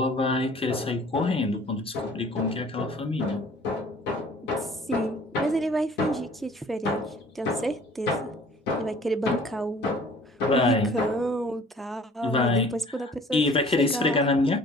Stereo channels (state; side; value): normal; both; correlation 0.51